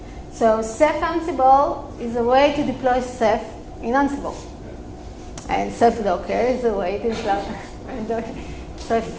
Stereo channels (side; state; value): both; identical; correlation 1.00